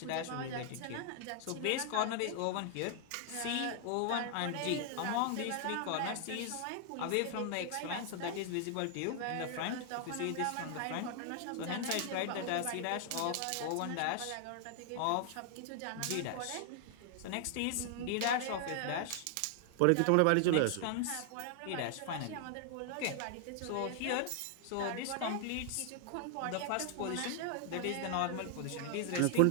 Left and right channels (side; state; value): both; different; correlation 0.00